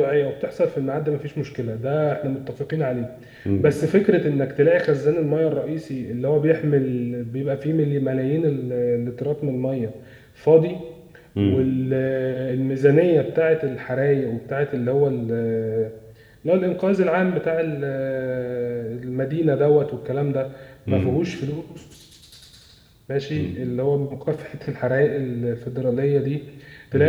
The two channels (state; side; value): identical; both; correlation 1.00